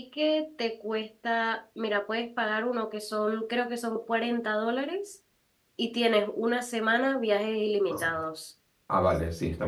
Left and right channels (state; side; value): identical; both; correlation 1.00